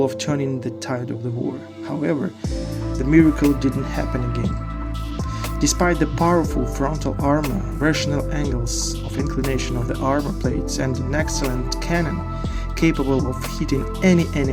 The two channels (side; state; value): both; identical; correlation 1.00